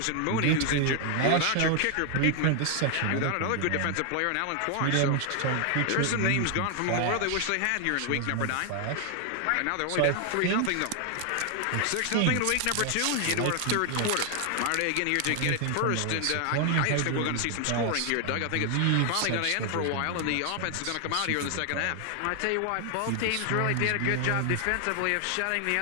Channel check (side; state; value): both; different; correlation 0.00